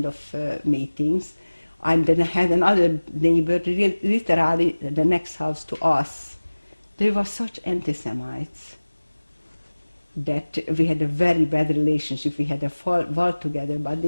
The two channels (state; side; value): inverted; both; correlation -1.00